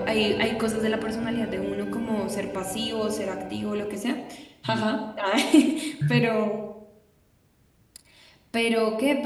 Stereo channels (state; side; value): identical; both; correlation 1.00